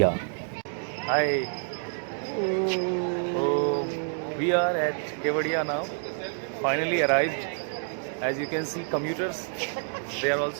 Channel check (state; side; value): silent; left; 59 dB below the other